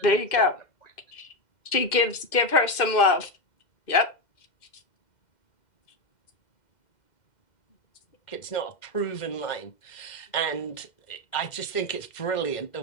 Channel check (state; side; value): late; right; 2.1 ms